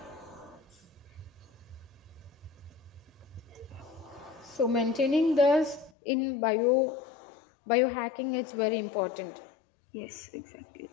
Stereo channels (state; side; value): drops out; right; at 5.9 s